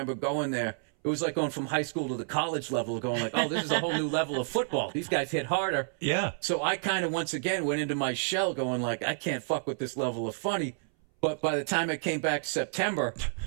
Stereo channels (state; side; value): silent; left; 58 dB below the other